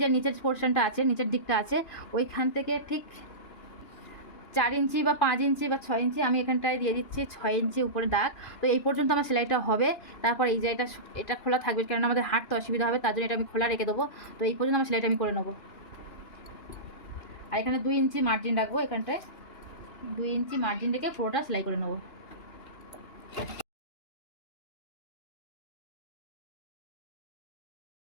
নিচের পোর্শনটা আছে, নিচের দিকটা আছে, ওইখান থেকে ঠিক 4 ইঞ্চি বা 5 ইঞ্চি বা 6 ইঞ্চি আমি এখানটায় দিয়ে দিচ্ছি 6 ইঞ্চি উপরে দাগ। তো এই পর্যন্ত আমার সেলাইটা হবে। তারপর এই জায়গাটা এটা খোলা থাকবে, কারণ আমাদের হাঁটতে অসুবিধা হবে, তার জন্য এটা আমি খোলা রেখে দেবো। তো এই পর্যন্ত আমার সেলাইটা আমি করে নেবো। আর এখানে 2 ইঞ্চি মার্জিন রাখবো, এখানটায় 2 ইঞ্চি মার্জিন রেখে পুরোটা সেলাই করে নেবো।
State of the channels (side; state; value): right; late; 2.9 ms